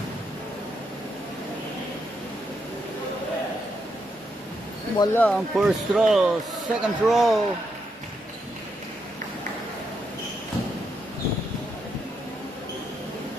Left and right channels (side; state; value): both; normal; correlation 0.80